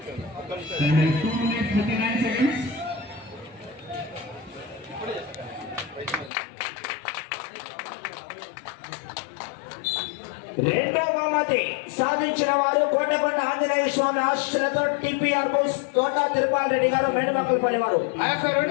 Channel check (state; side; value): drops out; right; at 6.3 s